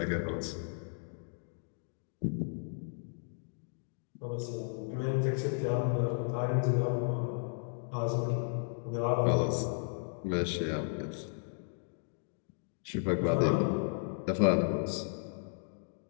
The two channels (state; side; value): silent; right; digital silence